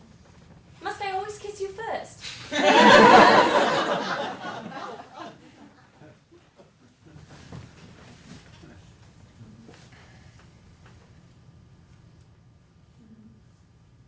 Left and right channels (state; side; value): identical; both; correlation 1.00